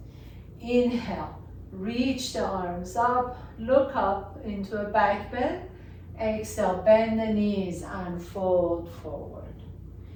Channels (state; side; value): identical; both; correlation 1.00